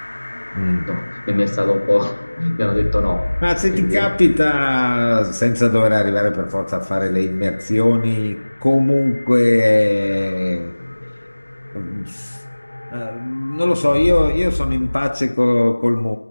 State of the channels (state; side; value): inverted; both; correlation -1.00